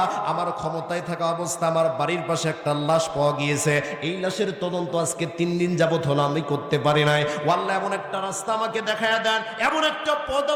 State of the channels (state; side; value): identical; both; correlation 1.00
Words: আমার ক্ষমতায় থাকা অবস্থা আমার বাড়ির পাশে একটা লাশ পাওয়া গিয়েছে, এই লাশের তদন্ত আজকে 3 দিন যাবত হলো আমি করতে পারি নাই। ও আল্লাহ, এমন একটা রাস্তা আমাকে দেখায়া দেন, এমন একটা পথ